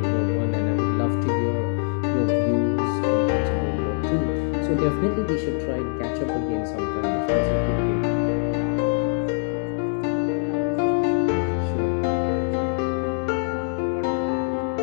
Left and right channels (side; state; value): right; silent; digital silence